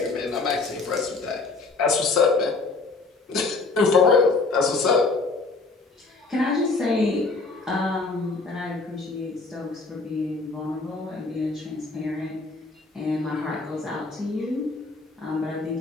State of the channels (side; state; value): right; quieter; 3.8 dB